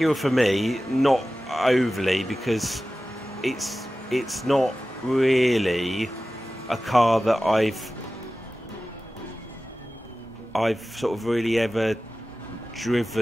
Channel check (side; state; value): both; normal; correlation 0.95